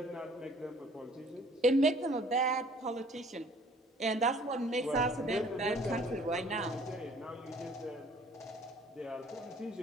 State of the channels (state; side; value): normal; both; correlation 0.55